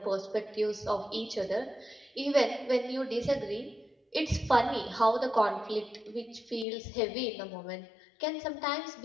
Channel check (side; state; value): right; drops out; at 6.7 s